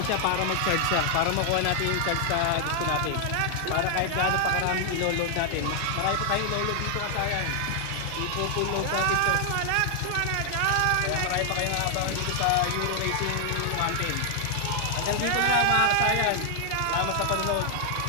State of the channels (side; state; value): both; different; correlation 0.00